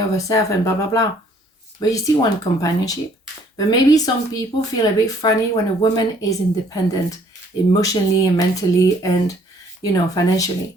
of herself and blah, blah, blah. But you still want companionship. But maybe some people feel a bit funny when a woman is independent emotionally and mentally and, you know, financially.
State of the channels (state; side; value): normal; both; correlation 0.61